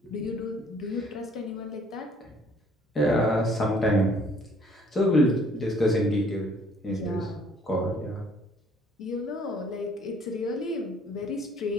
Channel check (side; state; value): both; normal; correlation 0.59